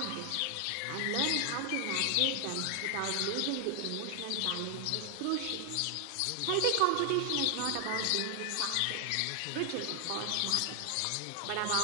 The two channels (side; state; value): both; different; correlation 0.00